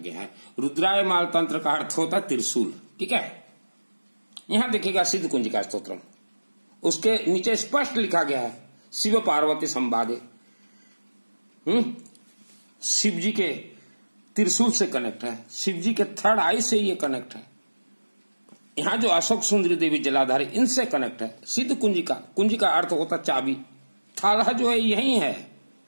है। रुद्रायमाल तंत्र का अर्थ होता है त्रिशूल, ठीक है। यहां देखिएगा सिद्ध कुंजिका स्तोत्रम, उसके नीचे स्पष्ट लिखा गया है शिव पार्वती संवादे। शिव जी के त्रिशूल से कनेक्ट है, शिव जी के थर्ड आई से ये कनेक्ट है। यहां जो अशोक सुंदरी देवी जलाधारी, इनसे कनेक्ट है। सिद्ध कुंजिका, कुंजिका अर्थ होता चाबी, थाला जो है यही है।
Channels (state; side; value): inverted; both; correlation -1.00